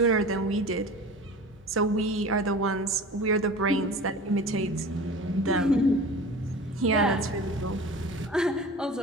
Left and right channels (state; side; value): normal; both; correlation 0.37